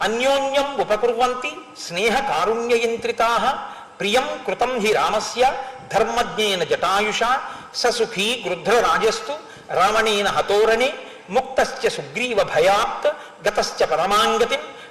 అన్యోన్యం ఉపకుర్వంతి స్నేహ కారుణ్యయంత్రితాః ప్రియం కృతం హి రామస్య ధర్మజ్ఞేన జటాయుషా ససుఖీ గృధ్రరాజస్తు రావణేన హతోరణే ముక్తశ్చ సుగ్రీవ భయాత్ గతశ్చ పరమాంగతిం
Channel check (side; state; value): both; identical; correlation 1.00